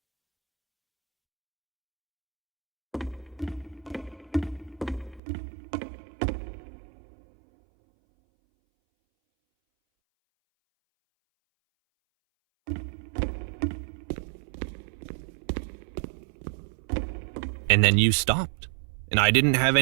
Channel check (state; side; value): drops out; left; at 5.2 s